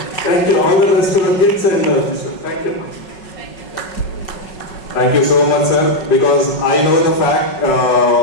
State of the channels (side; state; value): right; late; 5.5 ms